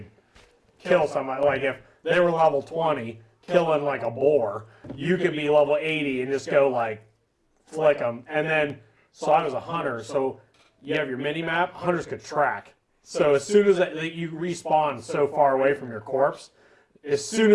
kill somebody. Like if they were level 20, killing like a boar, you could be level 80 and just go like flick them. And then, so I was a hunter. So you have your mini map. Hunters could track. So as soon as you respawn so far away from your corpse, as soon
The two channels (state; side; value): identical; both; correlation 1.00